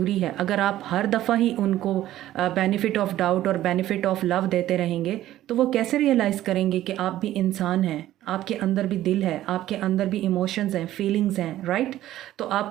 है। अगर आप हर दफ़ा ही उनको बेनिफिट ऑफ डाउट और बेनिफिट ऑफ लव देते रहेंगे तो वो कैसे रियलाइज़ करेंगे कि आप भी इंसान हैं, आपके अंदर भी दिल है, आपके अंदर भी इमोशंस हैं, फीलिंग्स हैं, राइट? तो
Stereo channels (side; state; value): left; quieter; 13.8 dB